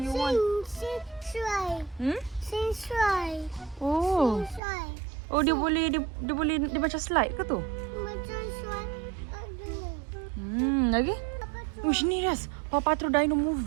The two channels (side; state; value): left; drops out; at 4.6 s